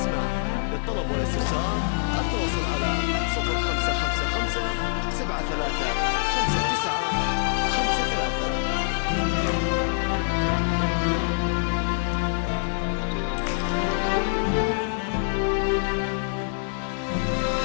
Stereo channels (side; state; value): right; silent; digital silence